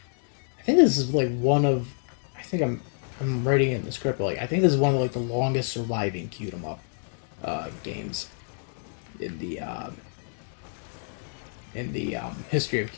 I think this is like one of. I think I'm writing it in the script. But like I think this is one of like the longest surviving cute 'em up games in the history of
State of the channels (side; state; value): right; silent; 59 dB below the other